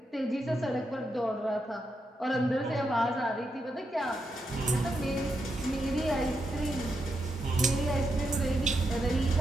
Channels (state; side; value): normal; both; correlation 0.83